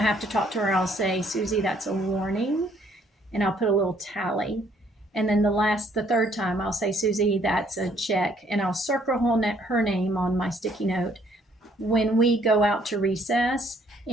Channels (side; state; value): both; normal; correlation 0.65